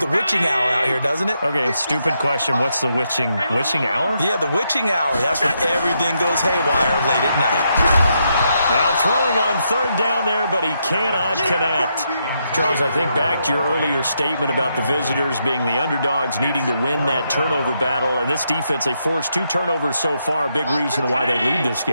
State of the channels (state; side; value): inverted; both; correlation -0.80